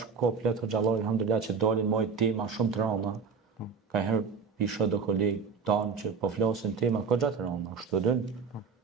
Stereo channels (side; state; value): left; quieter; 5.5 dB